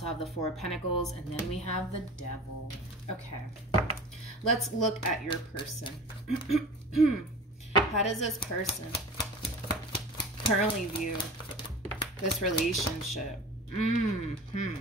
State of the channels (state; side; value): normal; both; correlation 0.37